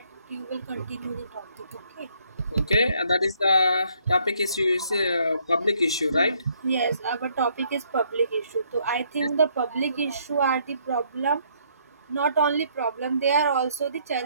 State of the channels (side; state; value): both; inverted; correlation -0.68